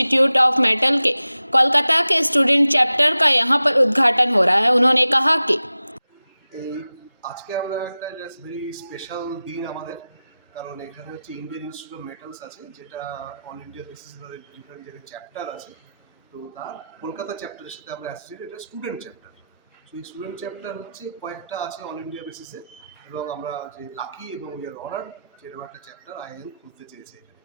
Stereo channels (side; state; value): both; inverted; correlation -0.94